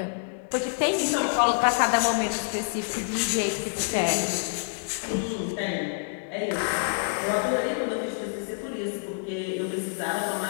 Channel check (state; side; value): silent; right; digital silence